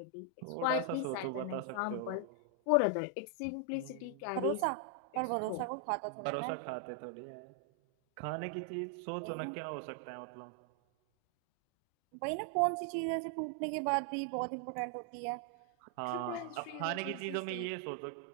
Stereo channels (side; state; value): both; different; correlation 0.00